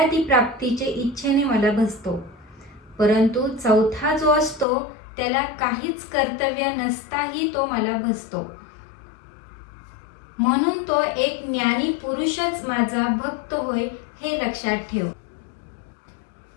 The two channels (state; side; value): drops out; right; at 4.7 s